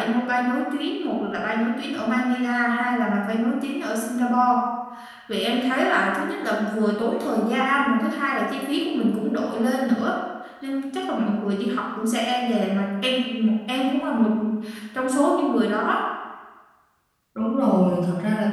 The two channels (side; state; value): both; identical; correlation 1.00